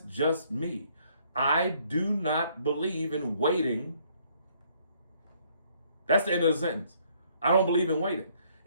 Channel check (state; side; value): inverted; both; correlation -0.66